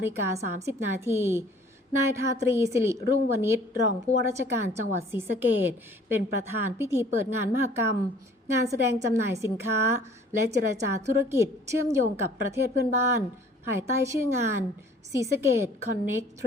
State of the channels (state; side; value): normal; both; correlation 0.54